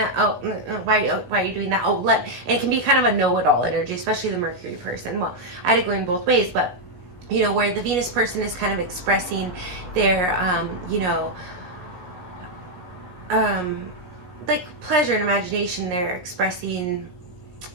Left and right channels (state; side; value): late; left; 17 ms